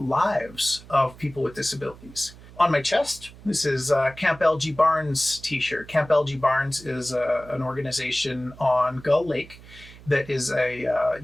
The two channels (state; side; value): noise; right; hum, 20 dB below the sound